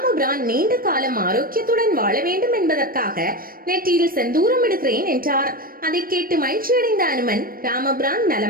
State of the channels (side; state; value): left; late; 0.42 ms